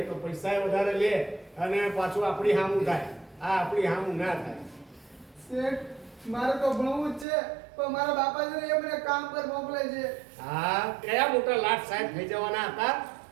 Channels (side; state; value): left; drops out; at 7.2 s